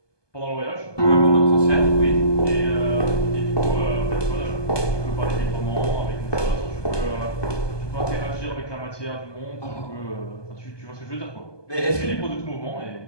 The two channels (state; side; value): late; right; 1.2 ms